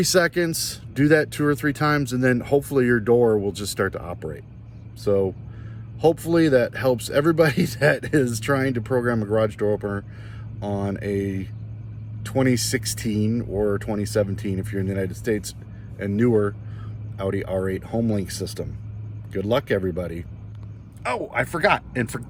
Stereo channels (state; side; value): identical; both; correlation 1.00